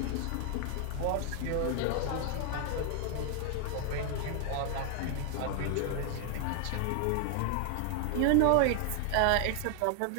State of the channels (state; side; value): different; both; correlation 0.00